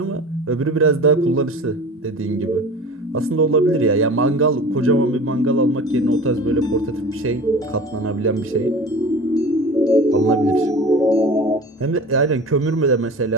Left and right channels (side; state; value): both; normal; correlation 0.37